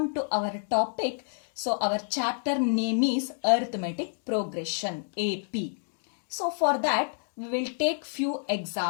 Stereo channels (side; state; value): right; silent; digital silence